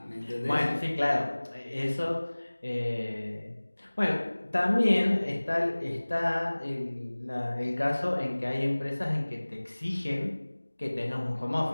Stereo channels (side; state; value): both; inverted; correlation -1.00